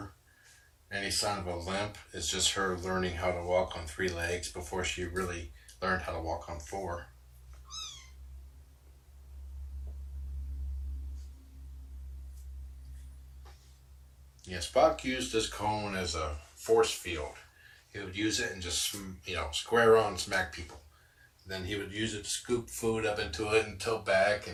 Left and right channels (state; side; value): identical; both; correlation 1.00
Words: Any sign of a limp is just her learning how to walk on 3 legs before she really learned how to walk on 4. Yeah, Spock used this cone as a force field. He would use it and just, square on smack people. Then he would use it to scoop food up into it and tilt back